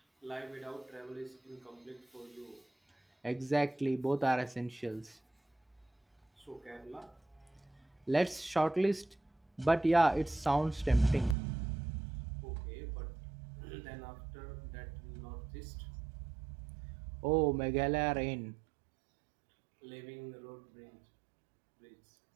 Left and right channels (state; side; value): drops out; left; at 11.4 s